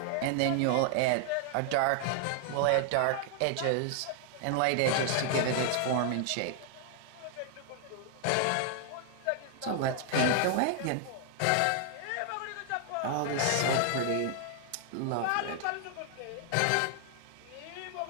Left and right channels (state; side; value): different; both; correlation 0.00